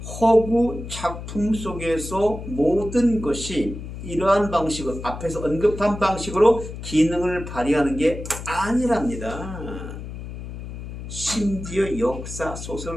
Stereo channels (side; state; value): left; noise; hum, 10 dB below the sound